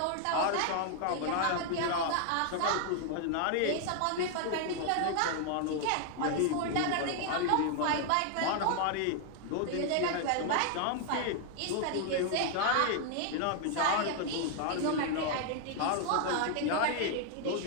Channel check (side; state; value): both; different; correlation 0.00